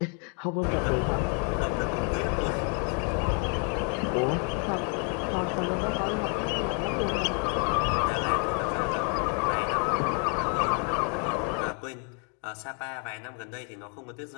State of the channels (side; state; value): right; quieter; 39.8 dB